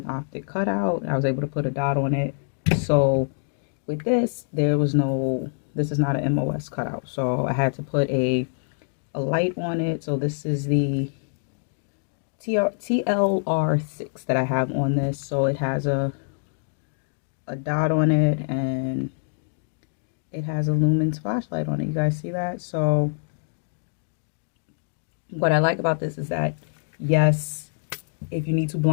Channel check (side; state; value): right; silent; digital silence